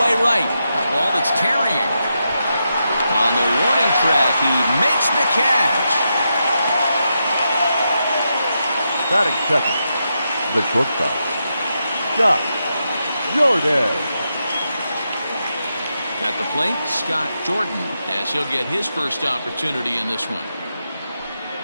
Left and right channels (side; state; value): both; inverted; correlation -0.85